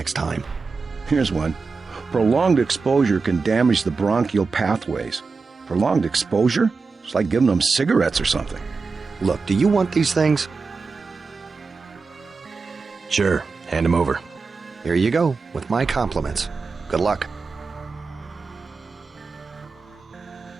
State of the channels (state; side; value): quieter; left; 4.5 dB